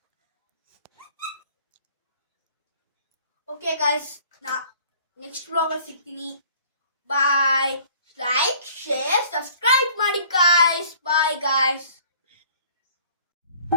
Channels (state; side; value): inverted; both; correlation -0.54